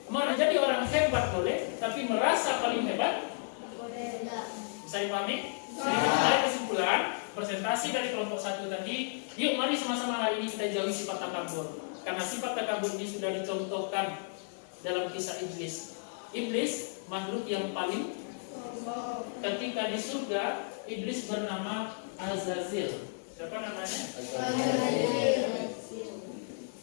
Menjadi orang hebat boleh, tapi merasa paling hebat bisa dipahami? Dari kesimpulan presentasi dari kelompok 1 tadi, yuk mari sama-sama hari ini kita jauhi sifat takabur. Karena sifat takabur ini sudah dicontohkan dalam kisah iblis. Iblis makhluk yang paling, ketika di surga iblis bernama Azazil. Siapa namanya?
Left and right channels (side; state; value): right; silent; digital silence